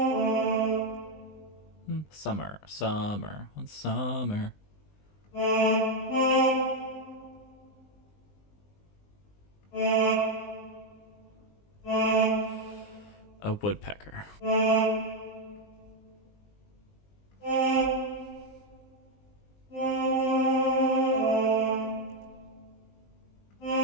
Summer, summer, one summer. A woodpecker. I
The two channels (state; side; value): late; right; 20 ms